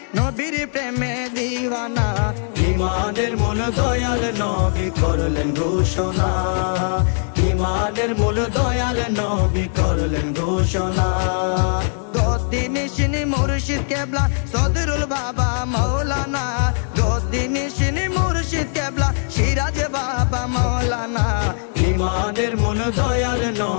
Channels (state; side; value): silent; right; 60 dB below the other